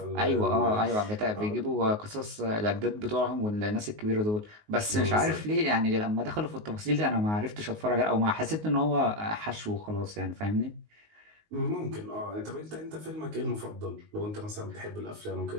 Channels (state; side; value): late; left; 19 ms